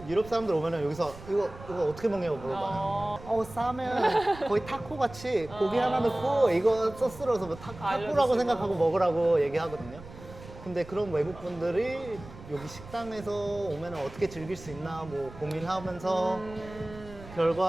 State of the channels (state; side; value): noise; right; rumble, 16 dB below the sound